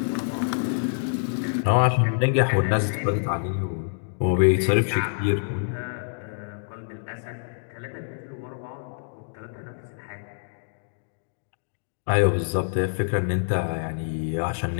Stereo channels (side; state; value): right; silent; digital silence